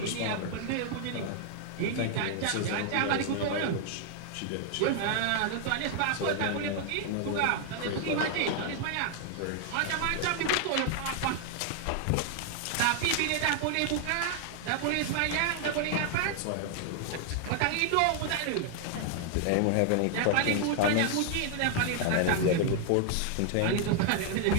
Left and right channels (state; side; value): different; both; correlation 0.00